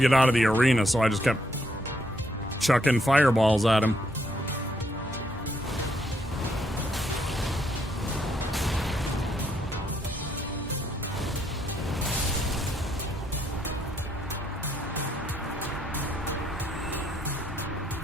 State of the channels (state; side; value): normal; both; correlation 0.73